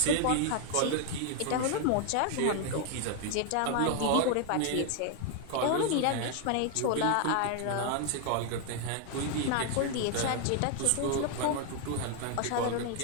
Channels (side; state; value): both; different; correlation 0.00